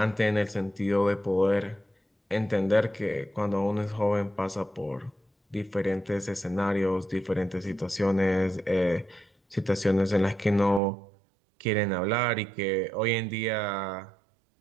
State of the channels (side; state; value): left; drops out; at 10.8 s